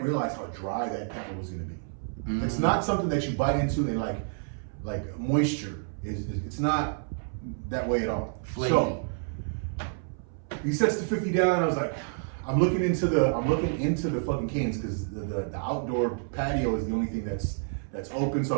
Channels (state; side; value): silent; left; 59 dB below the other